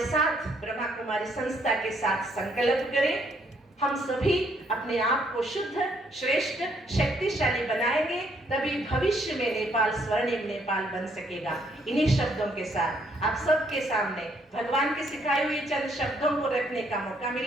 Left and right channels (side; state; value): both; normal; correlation 0.69